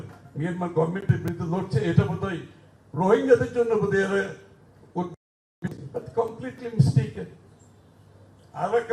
মিয়ানমার গভর্নমেন্টের বিরুদ্ধে লড়ছে, এটা বোধহয় রোহিঙ্গাদের জন্য বোধহয় এরা কমপ্লিটলি মিস্টেকেন।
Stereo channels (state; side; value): identical; both; correlation 1.00